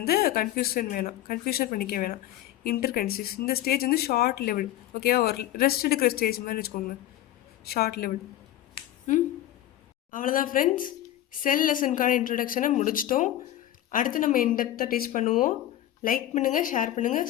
கன்ஃபியூஷன் பண்ணிக்க வேணாம். இன்டர்கைனசிஸ் இந்த ஸ்டேஜ் வந்து ஷார்ட் லெவல். ஓகேவா? ஒரு ரெஸ்ட் எடுக்கிற ஸ்டேஜ் மாதிரி வச்சுக்கோங்க, ஷார்ட் லெவல். அவ்வளோதான் ஃப்ரெண்ட்ஸ், செல் லெசனுக்கான இன்ட்ரொடக்ஷனை முடிச்சிட்டோம். அடுத்து நம்ம இன்டெப்த்தாக டீச் பண்ணுவோம். லைக் பண்ணுங்கள், ஷேர் பண்ணுங்கள்,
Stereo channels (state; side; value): quieter; right; 13.2 dB